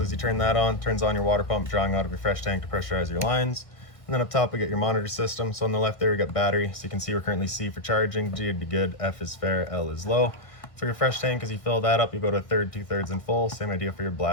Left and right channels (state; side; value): late; right; 1.6 ms